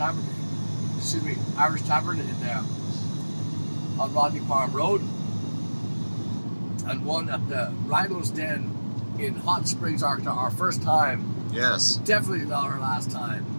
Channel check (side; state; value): both; inverted; correlation -1.00